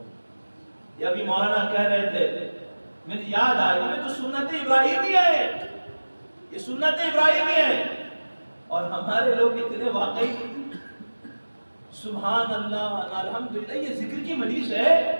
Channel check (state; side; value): inverted; both; correlation -1.00